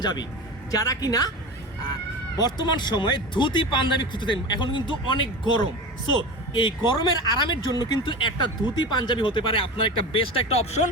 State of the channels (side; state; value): both; normal; correlation 0.28